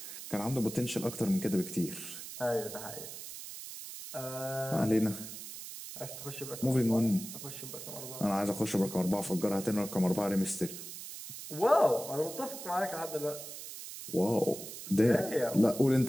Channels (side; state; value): right; noise; hiss, 10 dB below the sound